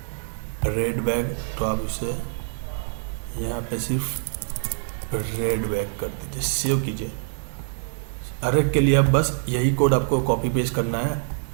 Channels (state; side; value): silent; left; 62 dB below the other